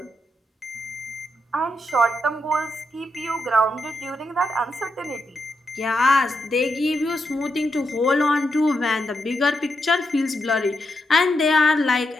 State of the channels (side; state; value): both; normal; correlation 0.83